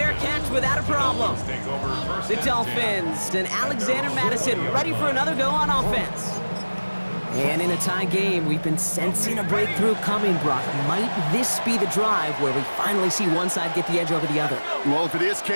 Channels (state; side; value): inverted; both; correlation -1.00